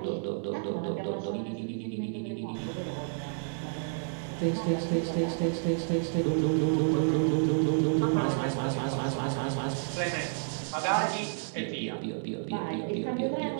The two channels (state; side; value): silent; left; digital silence